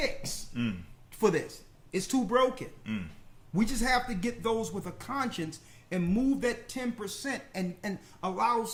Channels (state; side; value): identical; both; correlation 1.00